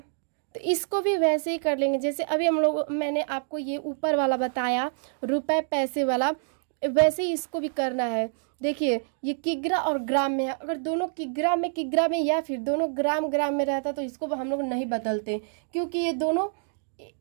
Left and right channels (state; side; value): silent; left; digital silence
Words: तो इसको भी वैसे ही कर लेंगे जैसे अभी मैंने आपको ये ऊपर वाला बताया रुपए पैसे वाला, वैसे ही इसको भी करना है। देखिए ये किग्रा और ग्राम में है, अगर दोनों किग्रा में या फिर दोनों ग्राम में रहता तो इसको हम लोग नहीं बदलते, क्योंकि ये दोनों